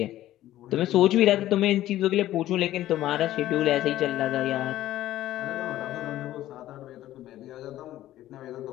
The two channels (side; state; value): right; quieter; 14.0 dB